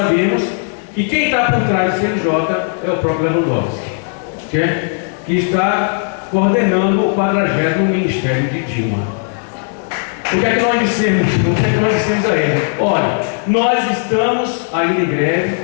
que quem está por trás do CNJ é o próprio Lewandowski, que está coordenando o 40º Ministério de Dilma. O que é que nós dissemos? O que é que nós dissemos a ele? Olha, nós estamos ainda em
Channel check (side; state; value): right; silent; 59 dB below the other